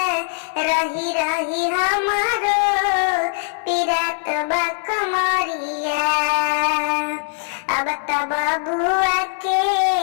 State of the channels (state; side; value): silent; right; digital silence